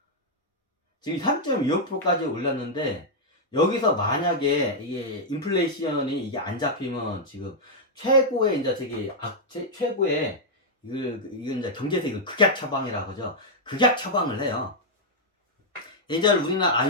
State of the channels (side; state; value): both; normal; correlation -0.04